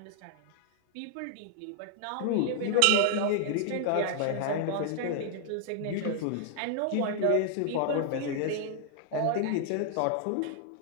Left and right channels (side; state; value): both; different; correlation 0.00